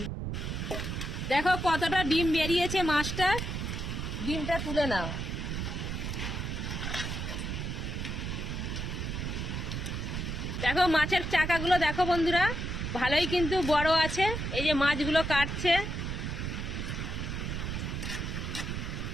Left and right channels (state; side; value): noise; right; rumble, 3 dB below the sound